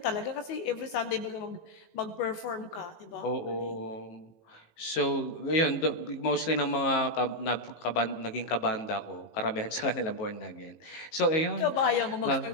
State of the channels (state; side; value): late; right; 19 ms